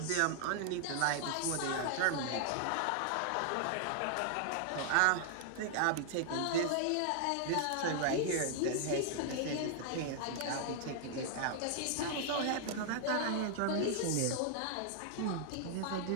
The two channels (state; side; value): different; both; correlation 0.00